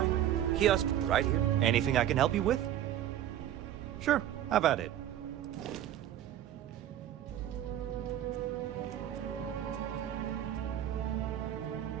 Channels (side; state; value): left; quieter; 11.7 dB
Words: Kiosk right here. Anything I can help you with? Sure, have at it.